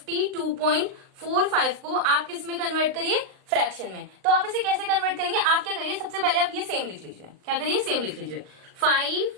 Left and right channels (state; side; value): late; left; 39 ms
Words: को आप किस में कन्वर्ट करिए? फ्रैक्शन में। तो आप इसे कैसे कन्वर्ट करेंगे? आप क्या करिए, सबसे पहले आप ये सेम लिख लीजिए। क्या करिए? सेम लिख लीजिए।